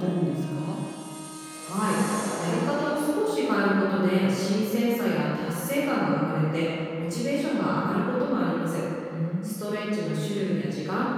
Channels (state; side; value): identical; both; correlation 1.00